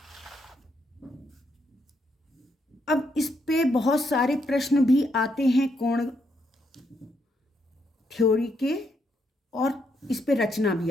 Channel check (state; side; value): normal; both; correlation 0.77